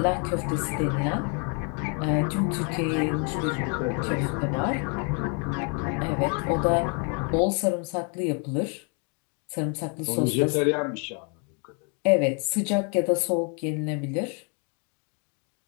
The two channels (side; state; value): right; quieter; 37.6 dB